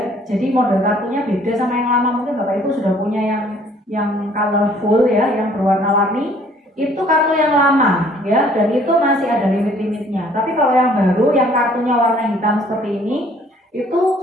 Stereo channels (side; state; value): both; normal; correlation 0.58